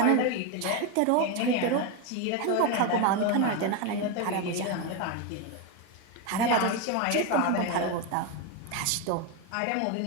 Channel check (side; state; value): both; different; correlation 0.03